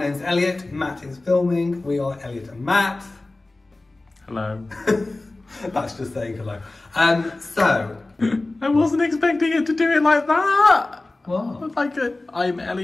Elliot, Matt is filming. We are Elliot and Matt. Hello. That's just saying hello. I wasn't expecting it to do it like that. What? Like I'm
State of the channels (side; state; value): right; quieter; 3.0 dB